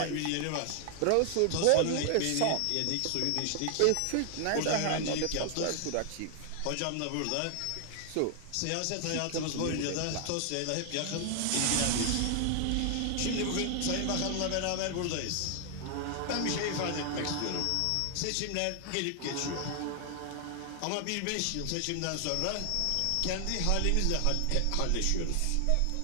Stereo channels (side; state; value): both; different; correlation 0.00